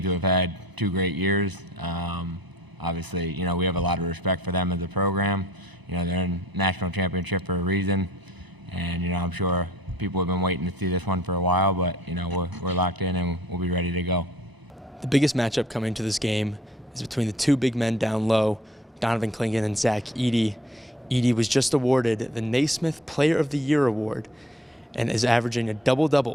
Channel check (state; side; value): normal; both; correlation 0.54